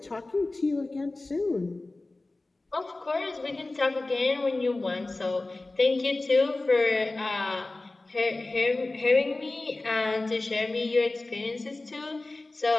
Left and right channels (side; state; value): right; quieter; 3.1 dB